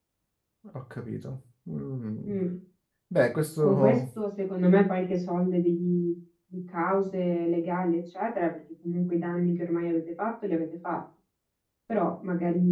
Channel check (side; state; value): both; identical; correlation 1.00